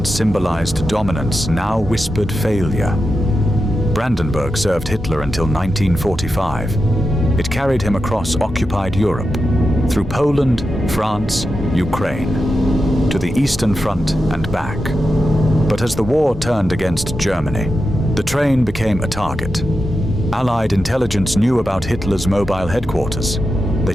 symbolized dominance now whispered failure. Brandenburg served Hitler until 1945. It carried him across occupied Europe, through Poland, France, Ukraine, to the Eastern Front and back. But as the war turned against Germany, the train became a target. Allied intelligence knew about Hitler's mobile headquarters. They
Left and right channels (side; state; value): both; normal; correlation 0.89